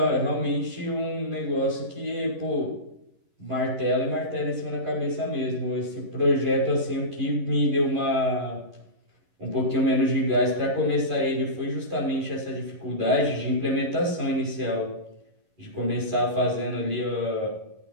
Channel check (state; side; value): late; left; 11 ms